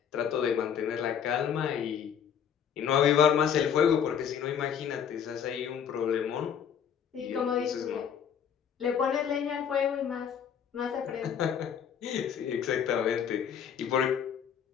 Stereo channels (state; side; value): quieter; right; 8.2 dB